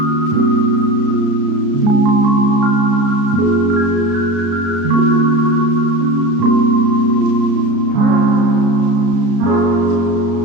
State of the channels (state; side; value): late; left; 34 ms